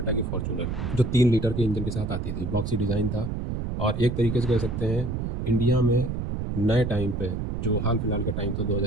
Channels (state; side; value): noise; right; rumble, 3 dB below the sound